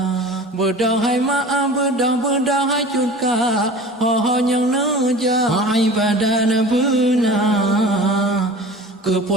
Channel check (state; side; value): normal; both; correlation 0.39